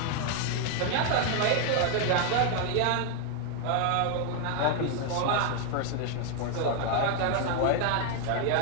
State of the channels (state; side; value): different; both; correlation 0.00